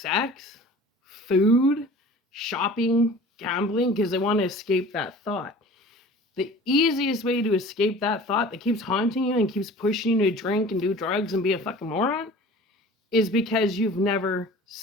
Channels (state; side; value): normal; both; correlation 0.43